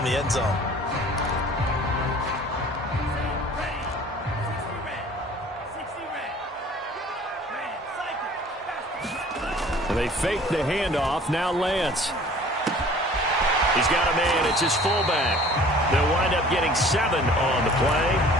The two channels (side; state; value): both; normal; correlation 0.49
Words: the end zone. And they fake the handoff. Now Lance. He's got a man. It's his fullback. They'll wind up getting 7 on the play.